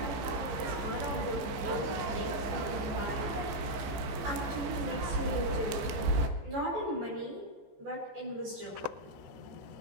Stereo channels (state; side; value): late; left; 15 ms